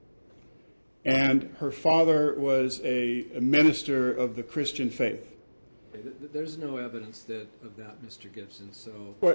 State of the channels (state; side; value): inverted; both; correlation -1.00